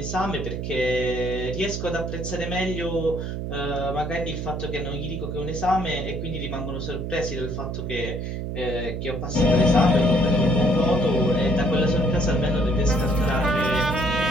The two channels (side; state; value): right; noise; hum, 4 dB below the sound